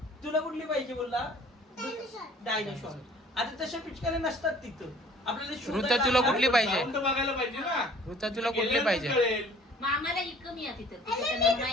तुला कुठली पाहिजे बोलला? डायनोसॉर. आता तशा पिचकाऱ्या नसतात तिथं. आपल्याला ऋता शोधायला तुला कुठली पाहिजे? जाऊन तर बघायला पाहिजे ना. ऋता तुला कुठली पाहिजे? कळेल. आम्हाला ही कमी आहे तिथं.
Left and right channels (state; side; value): normal; both; correlation 0.52